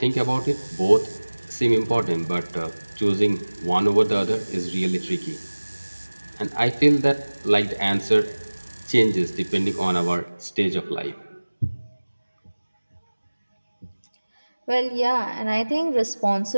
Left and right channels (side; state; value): both; inverted; correlation -1.00